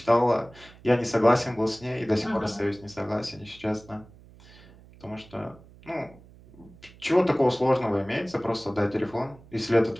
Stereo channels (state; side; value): noise; right; hum, 23 dB below the sound